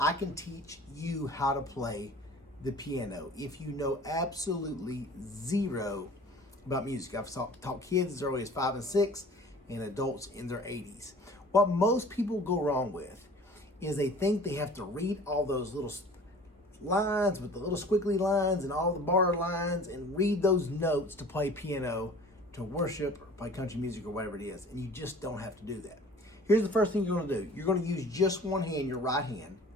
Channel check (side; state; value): both; normal; correlation 0.45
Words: can teach you how to play the piano if you know absolutely zero about music. I've taught kids as early as 5 and 6 and adults in their 80s. What most people go wrong with is they think they have to read all those little lines with the little squiggly lines and all the bar lines and read those notes to play piano, to worship, or play country music or whatever it is. And you just don't have to do that. Here's the first thing you're going to do. You're going to use just one hand, your right hand.